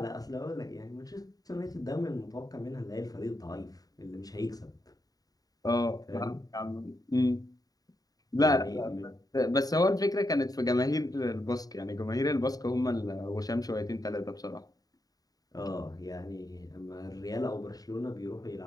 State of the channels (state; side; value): late; right; 0.18 ms